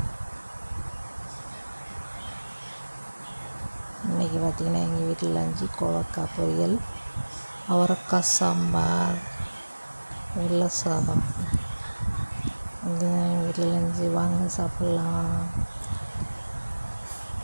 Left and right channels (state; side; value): inverted; both; correlation -1.00